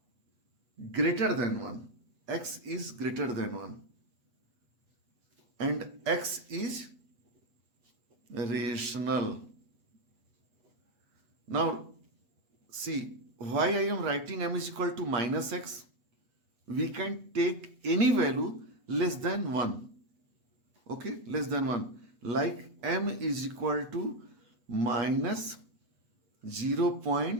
greater than 1. X is greater than 1. And x is rational. Now, see, why I am writing m is equal to minus x? We can take any value less than 1. Okay, less than 1. Like m is equal to minus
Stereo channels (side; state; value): left; late; 8.2 ms